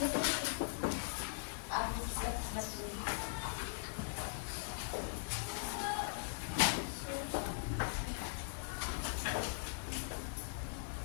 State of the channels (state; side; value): silent; right; 51 dB below the other